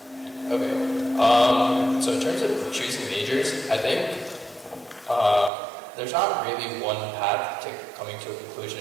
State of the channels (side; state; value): left; drops out; at 5.5 s